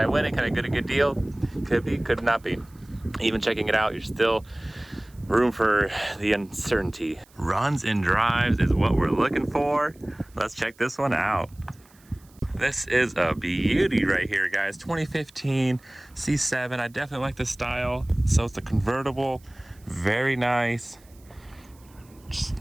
win it? Can I get a good deal? Could be, could not be. Even checking it out, you're still room for the uncertainty. Runs and drives is what we're looking for. Let's check this one out. This is a beauty right here, guys. 2015 C7. I definitely like the style. So it's the convertible. Very nice. Just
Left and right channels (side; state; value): right; noise; hiss, 29 dB below the sound